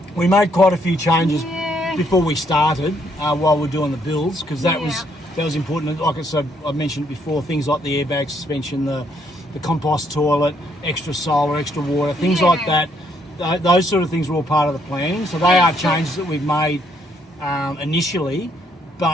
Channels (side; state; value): both; normal; correlation 0.71